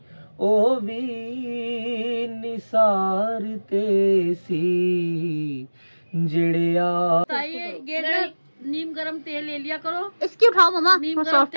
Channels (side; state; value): both; inverted; correlation -1.00